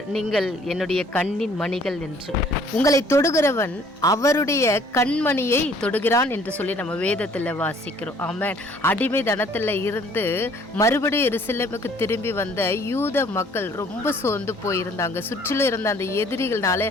நீங்கள் என்னுடைய கண்ணின் மணிகள் என்று. உங்களை தொடுகிறவன் அவருடைய கண்மணியை தொடுகிறான் என்று சொல்லி நம்ம வேதத்தில் வாசிக்கிறோம். ஆமென். அடிமை தனத்தில் இருந்து மறுபடியும் எருசலேமுக்கு திரும்பி வந்த யூத மக்கள் ரொம்ப சோர்ந்து போயிருந்தாங்க. சுற்றிலும் இருந்த அந்த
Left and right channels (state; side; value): normal; both; correlation 0.58